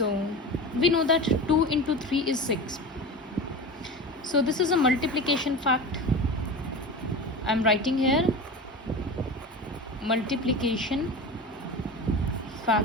we know that 2 into 3 is 6. So this is a multiplication fact. I am writing here multiplication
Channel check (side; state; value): both; normal; correlation 0.29